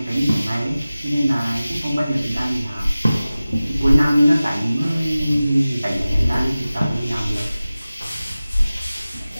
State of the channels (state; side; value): inverted; both; correlation -0.97